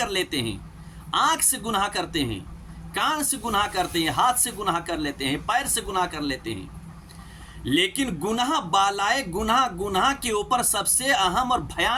لیتے ہیں، آنکھ سے گناہ کرتے ہیں، کان سے گناہ کرتے ہیں، ہاتھ سے گناہ کر لیتے ہیں، پیر سے گناہ کر لیتے ہیں، لیکن گناہ بالائے گناہ کے اوپر سب سے اہم اور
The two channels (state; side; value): identical; both; correlation 1.00